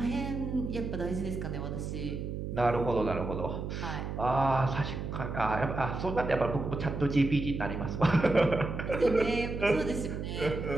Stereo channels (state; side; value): noise; right; hum, 5 dB below the sound